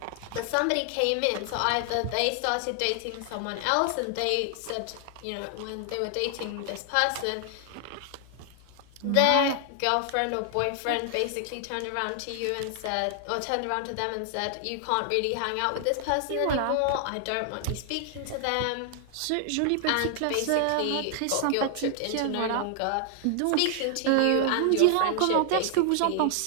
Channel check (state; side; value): different; both; correlation 0.00